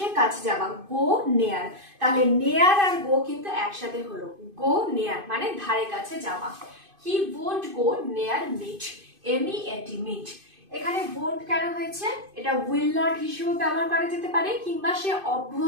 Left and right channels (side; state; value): left; late; 2.5 ms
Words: কাছে যাওয়া, go near। তাহলে near আর go কিন্তু একসাথে হলো, go near মানে ধারে কাছে যাওয়া। He won't go near meat, MEAT, meat। এখানে won't কেন হয়েছে? এটা will not হিসেবে ব্যবহার করা যেতে পারে, কিংবা সে